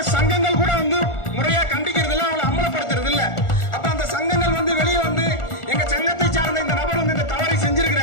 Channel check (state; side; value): late; right; 1.4 ms